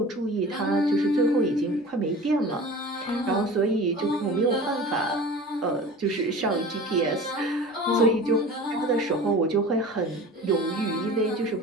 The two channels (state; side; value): normal; both; correlation 0.38